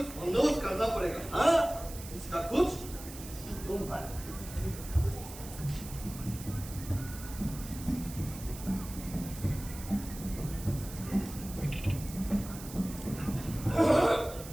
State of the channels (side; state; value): right; noise; hiss, 14 dB below the sound